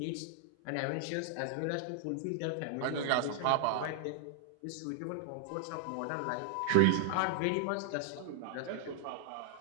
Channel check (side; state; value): both; different; correlation 0.00